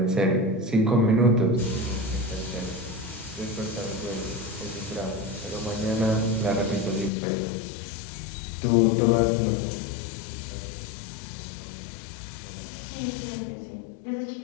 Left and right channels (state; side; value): drops out; right; at 7.1 s